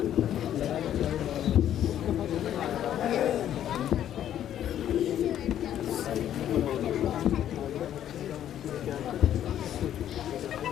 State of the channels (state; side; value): quieter; right; 10.9 dB